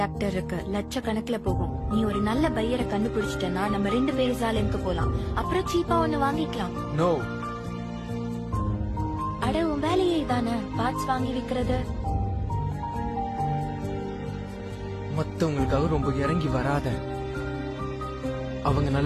இருக்கு. லட்சக்கணக்குல போகும். நீ ஒரு நல்ல பையரை கண்டுபிடிச்சிட்டனா நம்ம 2 பேரும் சாலைக்கு போலாம். அப்புறம் சீப்பா ஒண்ணு வாங்கிக்கலாம். நோ. அட உன் வேலையே இதானே, பார்ட்ஸ் வாங்கி விக்கிறது. மத்தவங்களுக்காக ரொம்ப இறங்கி வராத. அவங்க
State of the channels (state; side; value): identical; both; correlation 1.00